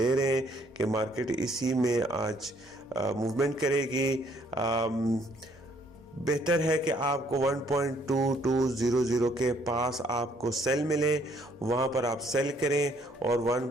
रहे हैं कि मार्केट इसी में आज मूवमेंट करेगी। बेहतर है कि आपको 1.2200 के पास आपको सेल मिले, वहाँ पर आप सेल करें और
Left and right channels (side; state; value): both; normal; correlation 0.66